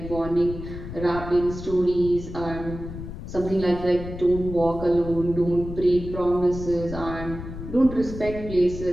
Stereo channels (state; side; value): noise; left; rumble, 10 dB below the sound